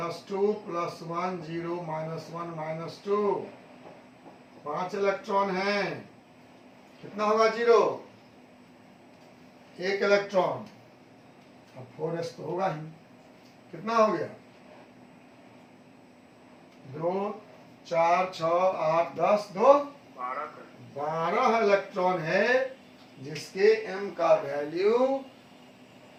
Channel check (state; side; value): identical; both; correlation 1.00